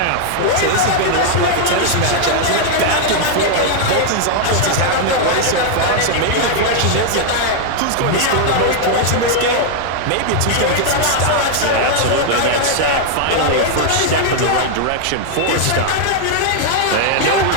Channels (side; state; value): both; different; correlation 0.00